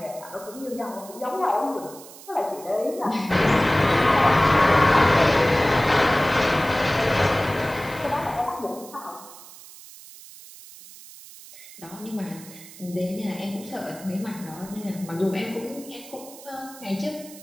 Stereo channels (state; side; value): noise; right; hiss, 18 dB below the sound